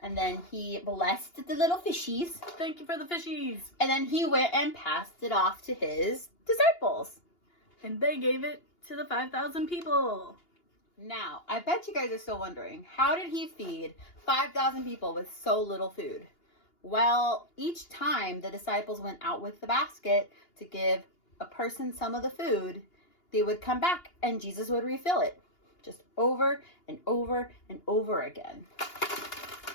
And then he blessed the little fishies. Thank you for the fishies. And then he went and passed it off to his disciples. And they gave it to the 5,000 people. Now, I bet you guys are still wondering, how did he feed 5,000 people with so little food? Well, each time the disciples went out with the basket to give a person some of the food, they would come back and Jesus would refill it. Just over and over and over again.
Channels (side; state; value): right; late; 2.8 ms